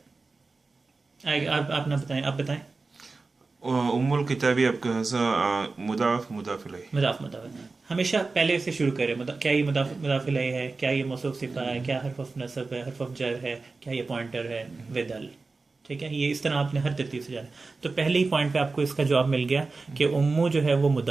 आप ना बताएं, आप बताएं। उम्मुल किताबी आपका मुदाफ मुदाफ इलैह। मुदाफ हमेशा पहले से शुरू करें। क्या ये मुदाफ इलैह है? क्या ये मौसूफ सिफा है? क्या हर्फ ऑफ नसब है? हर्फ ऑफ जर है? क्या ये पॉइंटर है? विदल, ठीक है। ये इस तरह आपने हर तरतीब से जाना। तो पहले ही पॉइंट पे आपको इसका जवाब मिल गया कि उम्मू जो है वो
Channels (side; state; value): left; quieter; 3.9 dB